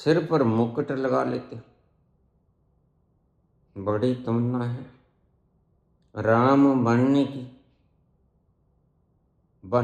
पर मुकुट लगा लेते। बड़ी तमन्ना है राम बनने की,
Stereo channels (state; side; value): identical; both; correlation 1.00